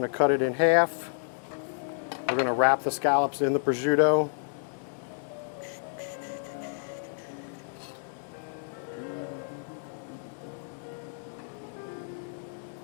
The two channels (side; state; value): right; silent; digital silence